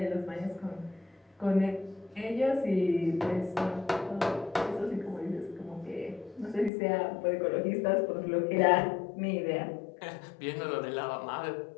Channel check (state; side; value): drops out; right; at 6.7 s